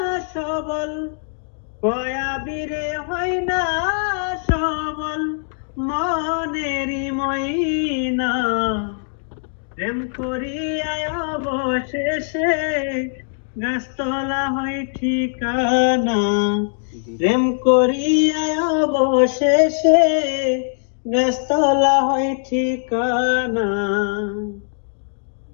সবল, কয়া বীরে হয় না সবল, মনেরই ময়না। প্রেম করিয়ায় অবশেষে গাছতলা হই ঠিকানা। প্রেম করিয়ায় অবশেষে গাছতলা হই ঠিকানা।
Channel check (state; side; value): silent; right; digital silence